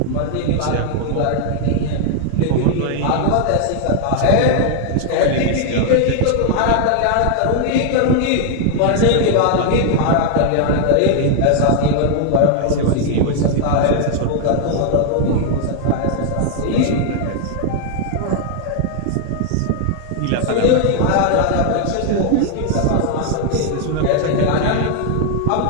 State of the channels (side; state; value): both; different; correlation 0.00